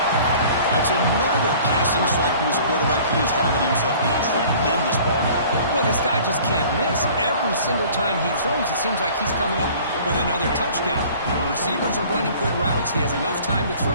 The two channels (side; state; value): both; inverted; correlation -0.49